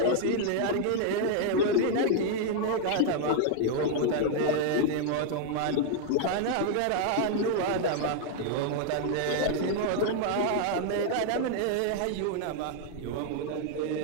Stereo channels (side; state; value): both; different; correlation 0.00